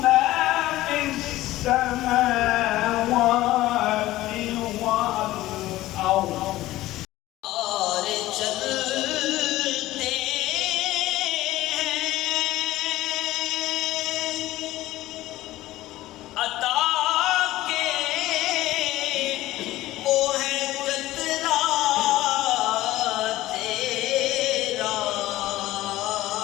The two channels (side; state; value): right; quieter; 16.3 dB